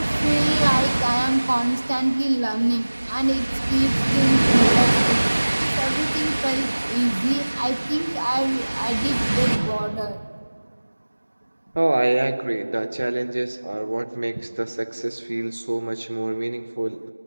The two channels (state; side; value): inverted; both; correlation -1.00